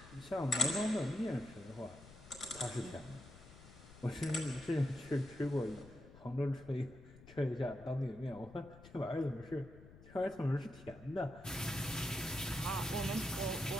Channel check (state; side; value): noise; left; rumble, 19 dB below the sound